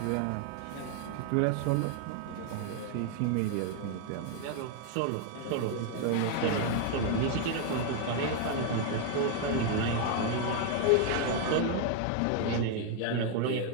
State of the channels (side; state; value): both; different; correlation 0.00